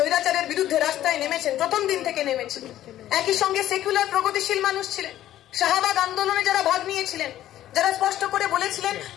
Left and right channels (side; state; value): right; quieter; 12.9 dB